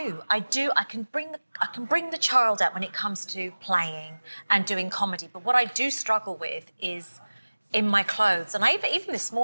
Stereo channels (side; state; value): both; inverted; correlation -1.00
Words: I can bring the child out when it comes to playing and doing comedy. But what I do struggle with is in my clothes. And even this